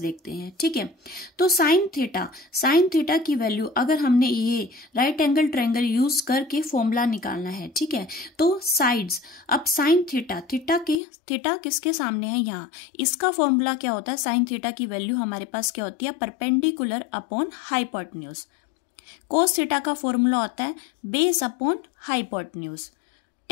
देखते हैं। ठीक है, तो साइन थीटा की वैल्यू अगर हमने ये राइट एंगल ट्रायंगल यूज करके फॉर्मूला निकालना है, ठीक है, तो साइड्स, अब साइन थीटा किसके सामने है यहाँ, इसका फॉर्मूला क्या होता है साइन थीटा की वैल्यू हमारे पास क्या होती है perpendicular upon hypotenuse. Cos theta का फॉर्मूला होता है बेस अपॉन हाइपोटेन्यूज।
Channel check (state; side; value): drops out; right; at 11.0 s